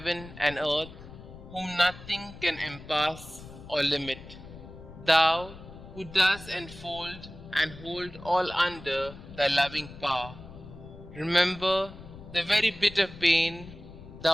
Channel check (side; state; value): left; noise; rumble, 16 dB below the sound